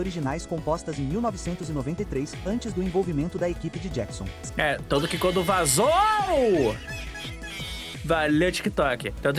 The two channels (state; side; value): identical; both; correlation 1.00